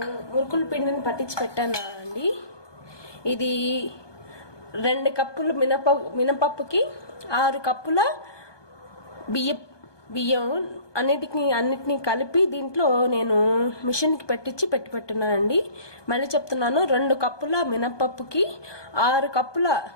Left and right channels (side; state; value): right; late; 1.2 ms